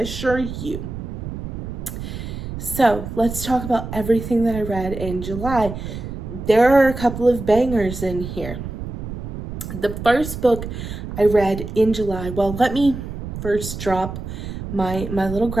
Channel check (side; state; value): right; noise; rumble, 7 dB below the sound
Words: you. So let's talk about everything that I read in July. There are a couple of bangers in here. The first book I read in July, well, let me first drop my little